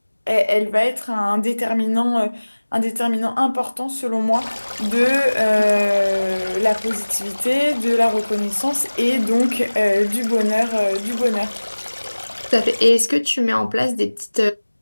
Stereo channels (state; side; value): inverted; both; correlation -1.00